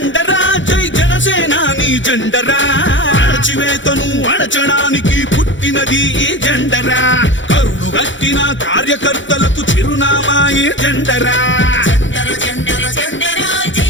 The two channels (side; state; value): right; late; 0.55 ms